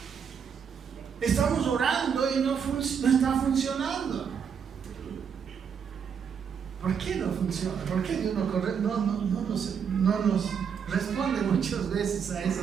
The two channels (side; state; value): left; quieter; 7.1 dB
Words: estamos orando y no está funcionando. ¿Por qué no funciona? ¿Por qué Dios no nos responde muchas veces a